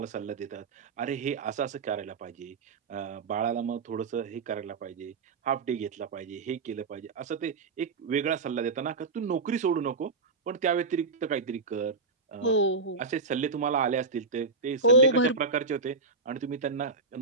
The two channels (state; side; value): quieter; left; 3.9 dB